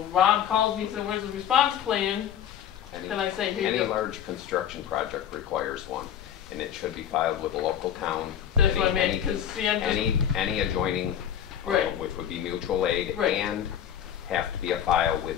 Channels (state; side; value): quieter; right; 9.6 dB